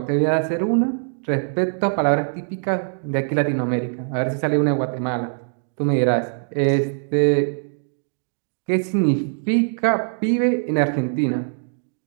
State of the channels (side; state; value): left; silent; digital silence